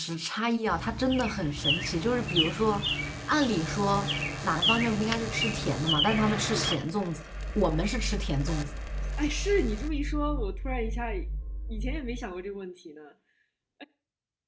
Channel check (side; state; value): both; identical; correlation 1.00